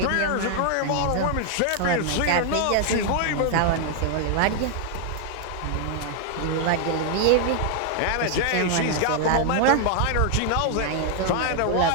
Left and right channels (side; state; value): both; different; correlation 0.00